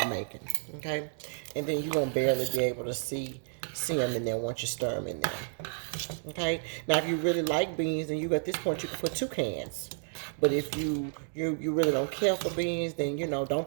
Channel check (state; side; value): silent; left; 57 dB below the other